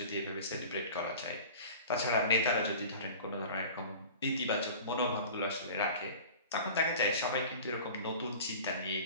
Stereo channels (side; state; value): both; inverted; correlation -0.40